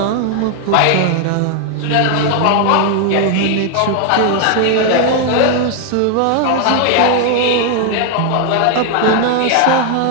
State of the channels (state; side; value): different; both; correlation 0.01